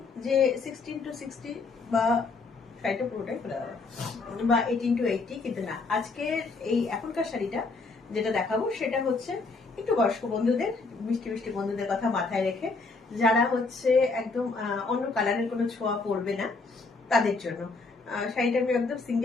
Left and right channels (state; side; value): quieter; right; 4.0 dB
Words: যে 16-60 বা শাড়িটা পুরোটাই খোলা যাবে বা 18-80, কিন্তু না, আজকে এই এখনকার শাড়িটা যেটা দেখাবো সেটা হচ্ছে একটু বয়স্ক বন্ধুদের, মিষ্টি মিষ্টি বন্ধুদের কথা মাথায় রেখে, যারা হচ্ছে একদম অন্য কালারের কোনো ছোঁয়া পড়বে না তাদের জন্য। শাড়িটা আমি একদম